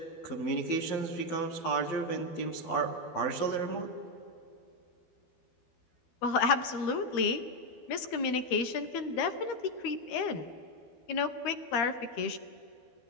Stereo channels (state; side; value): late; right; 12 ms